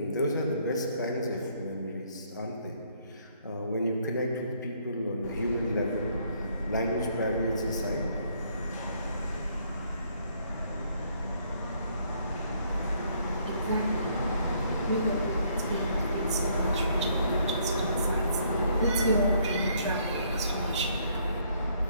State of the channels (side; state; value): both; inverted; correlation -0.67